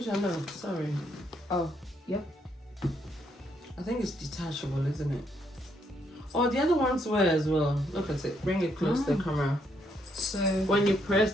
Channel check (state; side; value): normal; both; correlation 0.74